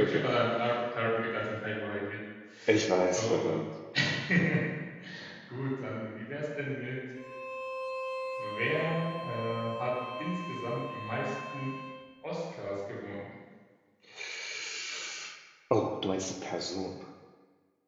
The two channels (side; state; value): both; identical; correlation 1.00